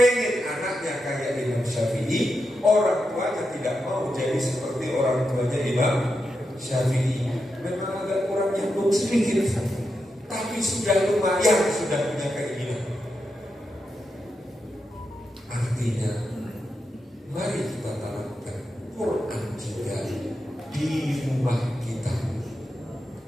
anaknya kayak Imam Syafi'i, orang tuanya tidak mau jadi seperti orang tuanya Imam Syafi'i. Memang agak kurang nyambung sedikit, tapi sudah lumayan, sudah punya keinginan. Artinya, mari kita tanamkan Quran juga di rumah kita.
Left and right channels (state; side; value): normal; both; correlation 0.87